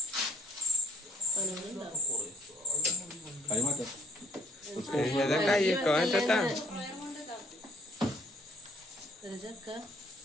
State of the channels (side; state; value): both; normal; correlation 0.61